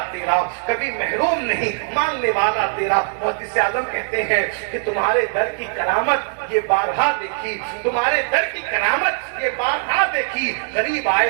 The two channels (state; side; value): silent; left; 65 dB below the other